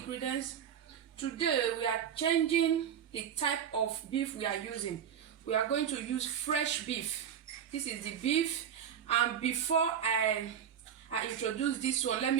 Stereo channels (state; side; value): quieter; left; 8.6 dB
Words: Today we are changing the type of beef we are using. We are going to use fresh beef. This is the beef, and before I introduce this one, let